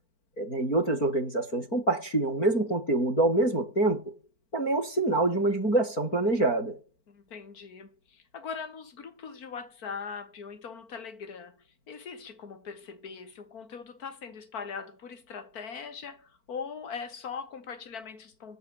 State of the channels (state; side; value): late; right; 4.4 ms